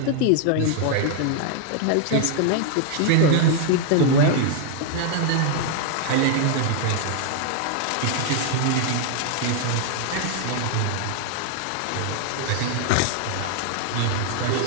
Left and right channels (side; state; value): both; different; correlation 0.00